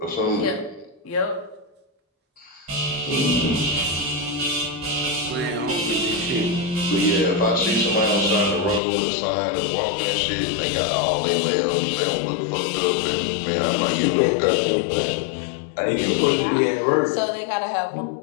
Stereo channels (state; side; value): drops out; right; at 8.8 s